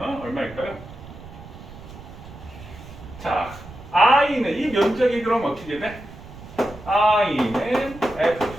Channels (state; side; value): noise; right; rumble, 16 dB below the sound